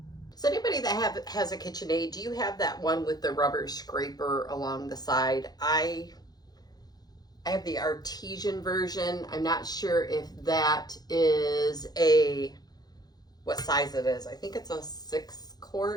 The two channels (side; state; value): right; late; 0.19 ms